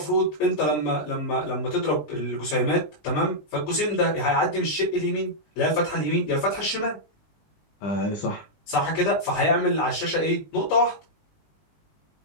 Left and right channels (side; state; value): right; late; 20 ms